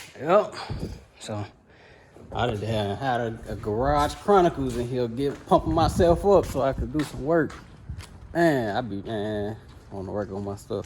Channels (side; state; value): both; identical; correlation 1.00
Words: Yep. So I just had a Garage Chronicles in here, pumping myself up so I could do some work. Man, I want to work on my